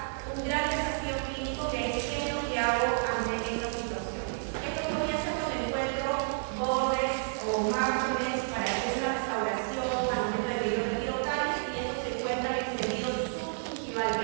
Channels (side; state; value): left; silent; 57 dB below the other